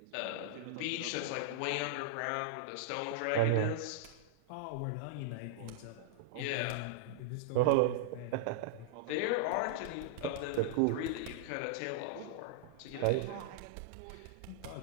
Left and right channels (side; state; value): both; different; correlation -0.02